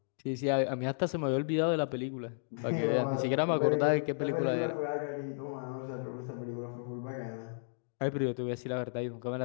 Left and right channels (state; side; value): silent; right; digital silence